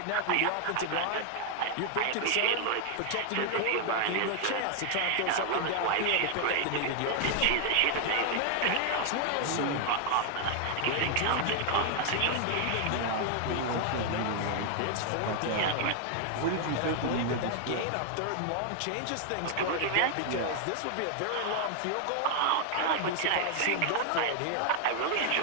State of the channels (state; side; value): different; both; correlation 0.00